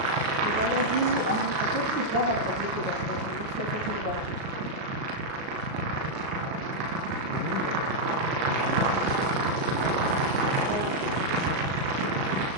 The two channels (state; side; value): late; left; 37 ms